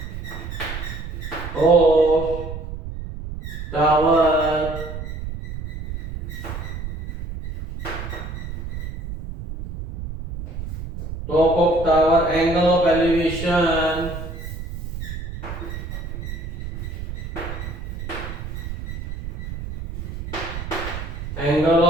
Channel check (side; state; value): right; noise; rumble, 7 dB below the sound